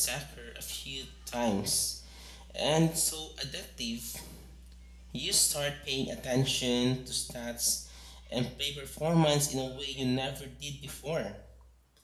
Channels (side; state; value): both; identical; correlation 1.00